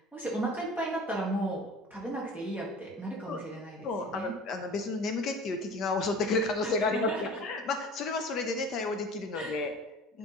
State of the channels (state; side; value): normal; both; correlation 0.42